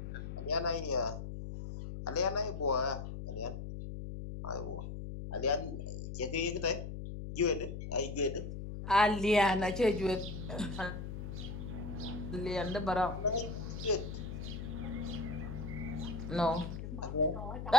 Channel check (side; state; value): left; noise; hum, 6 dB below the sound